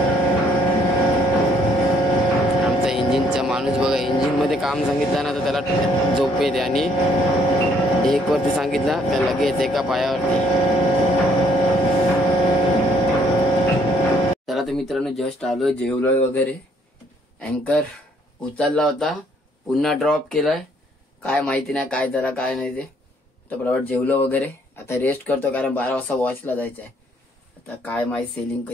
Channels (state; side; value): normal; both; correlation 0.66